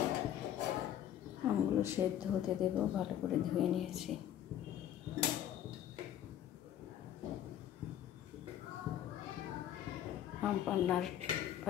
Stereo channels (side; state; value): right; quieter; 11.0 dB